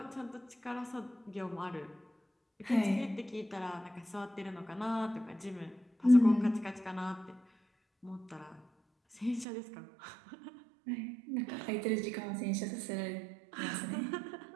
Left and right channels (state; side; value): drops out; left; at 9.5 s